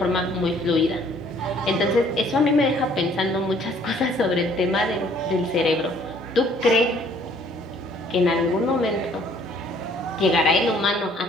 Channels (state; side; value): normal; both; correlation 0.59